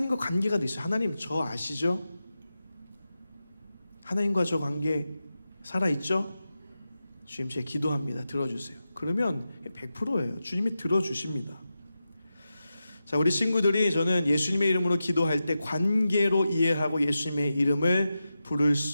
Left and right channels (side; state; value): both; inverted; correlation -0.91